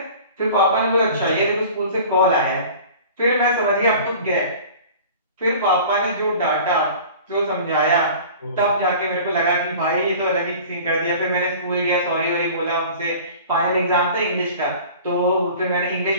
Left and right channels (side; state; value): both; inverted; correlation -0.42